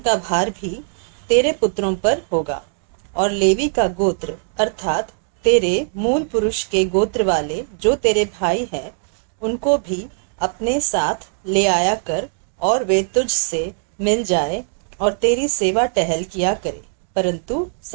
का भार भी तेरे पुत्रों पर होगा। और लेवी का गोत्र अर्थात तेरे मूल पुरुष के गोत्र वाले जो तेरे भाई हैं, उनको भी अपने साथ ले आया कर, और वे तुझ से मिल जाए और तेरी सेवा टहल किया करे। परंतु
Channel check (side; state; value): left; silent; digital silence